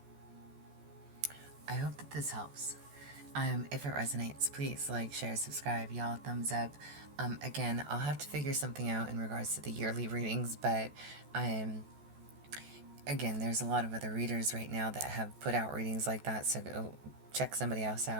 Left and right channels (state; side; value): late; left; 14 ms